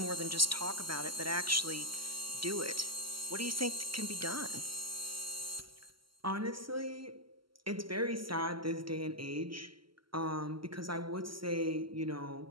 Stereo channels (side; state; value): left; late; 0.74 ms